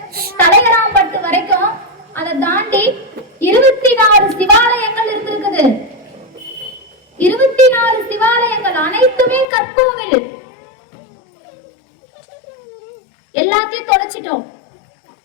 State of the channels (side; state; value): right; drops out; at 9.5 s